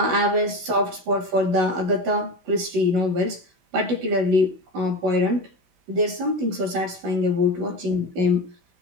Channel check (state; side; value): late; left; 16 ms